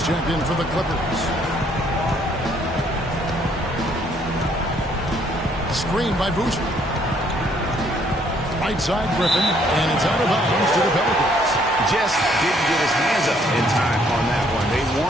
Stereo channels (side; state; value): both; normal; correlation 0.66